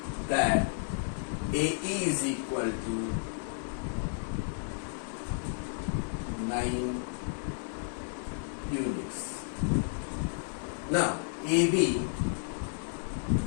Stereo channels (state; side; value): silent; right; digital silence